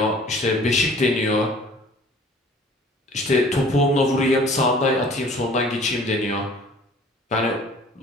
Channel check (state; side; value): normal; both; correlation 0.51